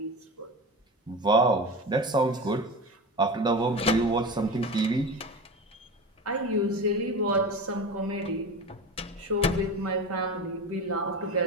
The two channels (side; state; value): both; normal; correlation 0.28